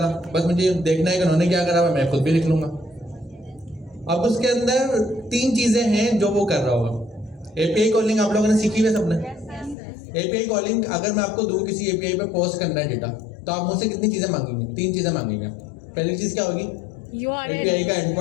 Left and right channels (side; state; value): right; drops out; at 9.8 s